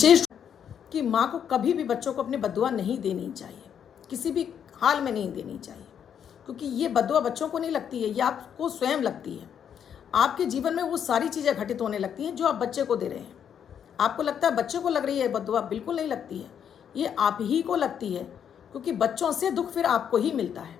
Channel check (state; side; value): quieter; right; 8.5 dB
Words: कि माँ को कभी भी बच्चों को अपनी बद्दुआ नहीं देनी चाहिए, किसी भी हाल में नहीं देनी चाहिए, क्योंकि ये बद्दुआ बच्चों को नहीं लगती है, ये आपको स्वयं लगती है। आपके जीवन में वो सारी चीज़ें घटित होने लगती हैं जो आप बच्चे को दे रहे हैं। आपको लगता है बच्चे को लग रही है बद्दुआ, बिल्कुल नहीं लगती है, ये आप ही को लगती है, क्योंकि बच्चों से दुख फिर आपको ही मिलता